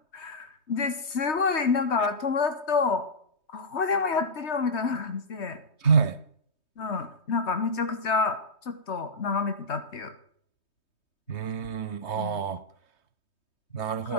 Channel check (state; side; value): late; right; 3.2 ms